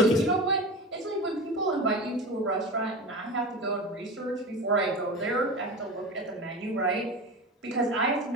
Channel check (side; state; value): both; normal; correlation 0.28